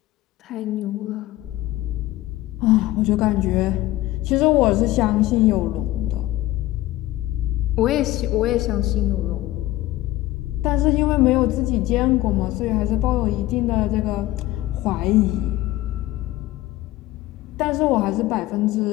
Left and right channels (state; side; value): quieter; right; 16.4 dB